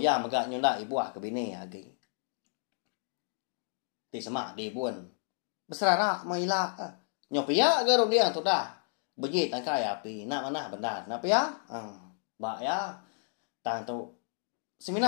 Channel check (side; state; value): right; silent; digital silence